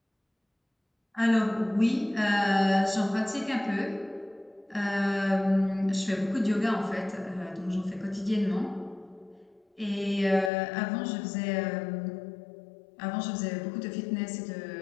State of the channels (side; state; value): right; drops out; at 10.5 s